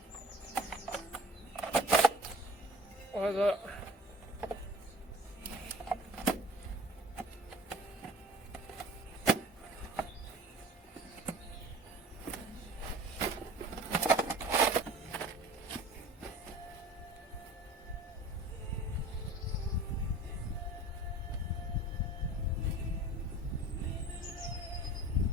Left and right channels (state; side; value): normal; both; correlation 0.43